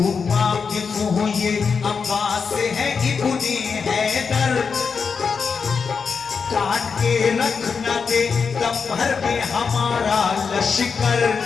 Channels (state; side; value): quieter; right; 5.6 dB